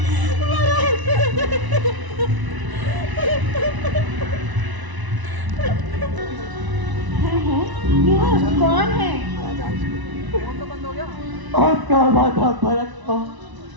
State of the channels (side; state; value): left; late; 1.0 ms